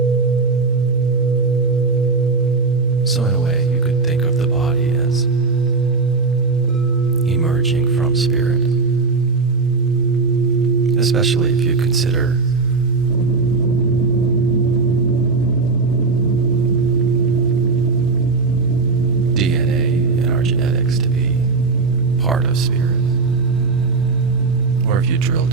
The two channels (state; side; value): quieter; left; 4.2 dB